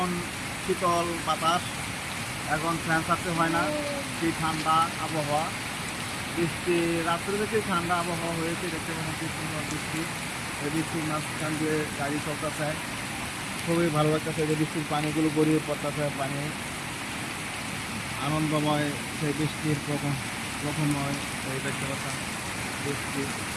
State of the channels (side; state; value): both; identical; correlation 1.00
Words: শীতল বাতাস, এখন ফ্যান ছাড়তে হয় না। কি ঠান্ডা আবহাওয়া, বৃষ্টি রাত্রে থেকে ঠান্ডা আবহাওয়া হয়েছে। দেখতে পাচ্ছেন কি সুন্দর বৃষ্টি। এই বৃষ্টির মাঝখান দিয়ে গাড়ি চলতেছে, খুবই ভালো লাগতেছে। যে বৃষ্টির পানিগুলো গড়িয়ে পড়তেছে, পানি আনন্দময়। সেই বৃষ্টির প্রথমময় এই দেখতে পাচ্ছেন বৃষ্টি,